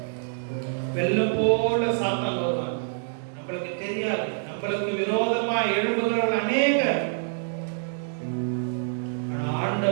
வெள்ளம் போல சாத்தான் வருவான். நம்மளுக்கு தெரியாது, நம்மளுக்கு விரோதமா எழும்புகிறவர்கள் அநேகர். ஆனா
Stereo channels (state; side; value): silent; left; digital silence